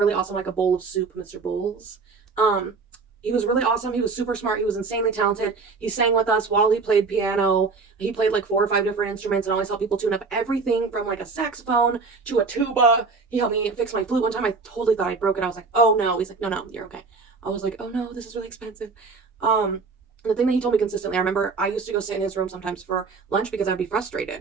awesome, like a bowl of soup, Mr. Bowles. Um, he was really awesome. He was super smart. He was insanely talented. He sang with us while he played piano. He played like 4 or 5 different instruments and always helped people tune up everything from like a saxophone to a tuba. He helped me fix my flute one time. I totally thought I broke it. I was like, oh no. He's like, no, no, you're okay. I was like, oh no, this is really expensive. The thing that he told me consistently, I remember I used to go sit in his room sometimes for lunch because I'd be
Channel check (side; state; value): left; quieter; 4.5 dB